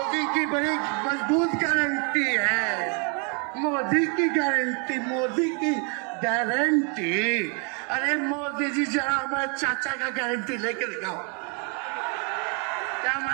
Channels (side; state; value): left; quieter; 37.5 dB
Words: की बड़ी मजबूत गारंटी है, मोदी की गारंटी, मोदी की गारंटी। अरे मोदी जी जरा हमारे चाचा का गारंटी लेके दिखाओ। क्या